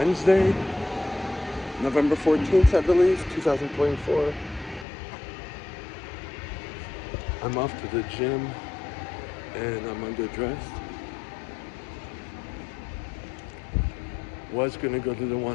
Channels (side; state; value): right; drops out; at 4.9 s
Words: November 14th, I believe, 2024. I'm off to the gym and I'm underdressed. Was gonna go to